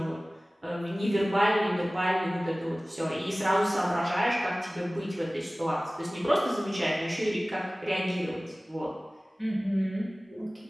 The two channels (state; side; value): normal; both; correlation 0.98